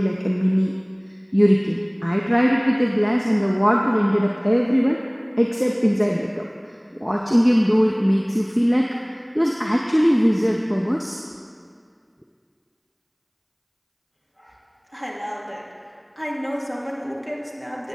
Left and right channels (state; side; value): identical; both; correlation 1.00